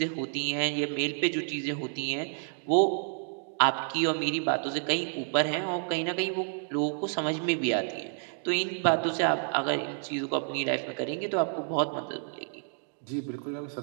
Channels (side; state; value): left; silent; 58 dB below the other